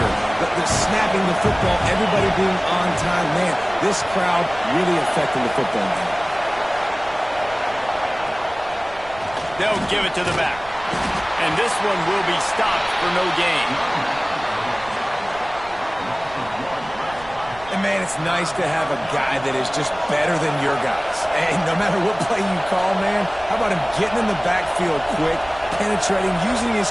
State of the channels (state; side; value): noise; right; rumble, 20 dB below the sound